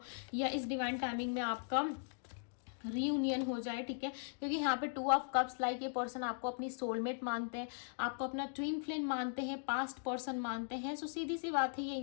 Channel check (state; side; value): silent; right; digital silence